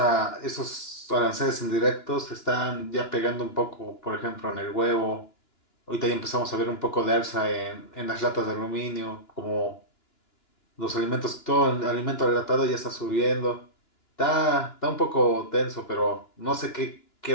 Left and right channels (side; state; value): right; late; 2.9 ms